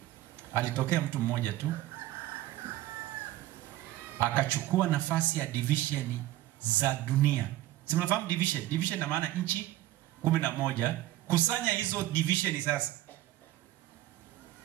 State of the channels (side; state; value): left; quieter; 14.9 dB